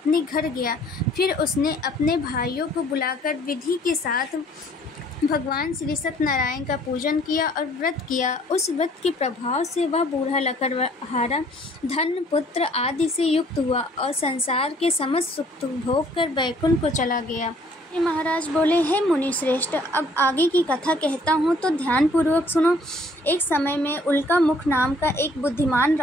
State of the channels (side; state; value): both; normal; correlation 0.59